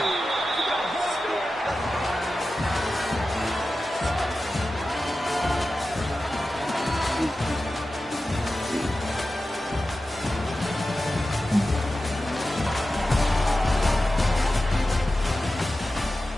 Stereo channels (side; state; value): both; normal; correlation 0.93